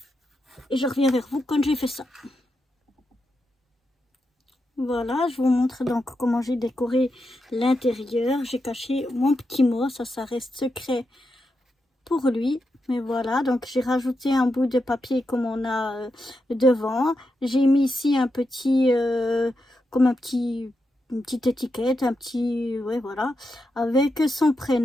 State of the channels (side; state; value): both; normal; correlation 0.86